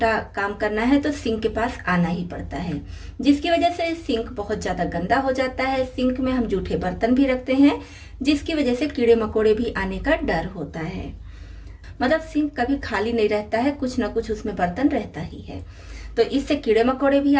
काम करना है तो सिंक के पास आना ही पड़ता है, जिसकी वजह से सिंक बहुत ज्यादा गंदा हो जाता है। सिंक में हम जूठे बर्तन भी रखते हैं, जिसकी वजह से कीड़े मकोड़े भी आने का डर होता है। मतलब सिंक कभी खाली नहीं रहता है, कुछ ना कुछ उसमें बर्तन रहता ही है। तो इससे कीड़े मकोड़े भी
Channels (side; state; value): both; identical; correlation 1.00